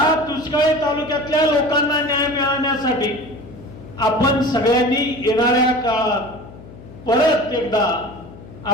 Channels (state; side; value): noise; left; hum, 18 dB below the sound